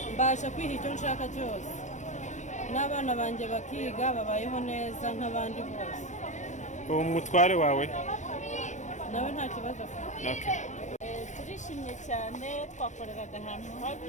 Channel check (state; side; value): late; right; 0.35 ms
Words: mbasha kwiha icyo nshaka cyose, n'abana banjye bakiga babayeho neza nk'abandi bose. Uwo mutware wawe nawe nta kibazo afite. Turishimye cyane, twakoreraga ahantu